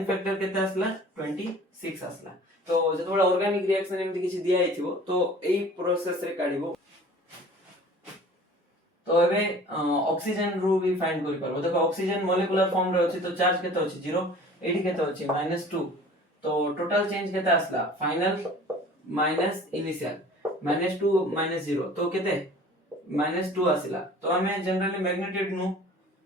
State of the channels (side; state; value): both; normal; correlation 0.46